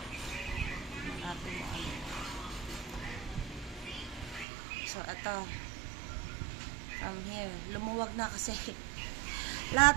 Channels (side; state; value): left; drops out; at 4.5 s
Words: Natin mo ano. So, ito. From here. Lumuwag na kasi.